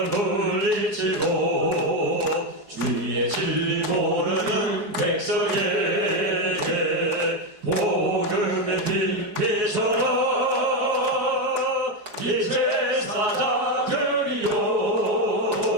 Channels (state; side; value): late; left; 4.8 ms